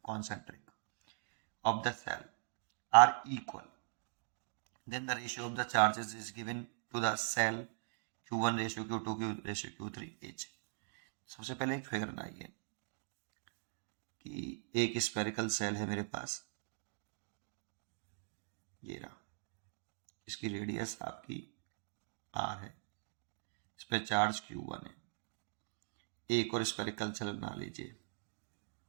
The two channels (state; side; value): silent; left; digital silence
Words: concentric of the cell are equal, then the ratio of the charges is given to the cell Q1 ratio Q2 Q ratio Q3 H। सबसे पहले एक figure बनाइए कि एक स्पेरिकल सेल है मेरे पास, ये रहा, इसकी रेडियस आपकी R है, इस पर चार्ज Q1 है। एक और स्पेरिकल सेल बना लीजिए,